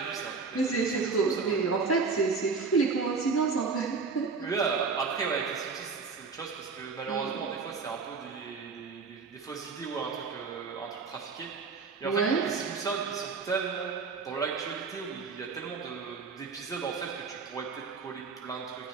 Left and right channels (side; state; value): left; quieter; 4.8 dB